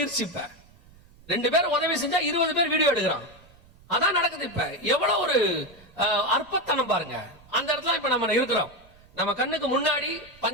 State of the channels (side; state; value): right; noise; rumble, 26 dB below the sound